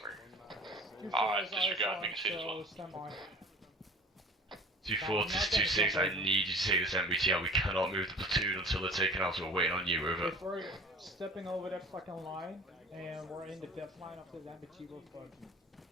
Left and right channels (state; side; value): normal; both; correlation 0.43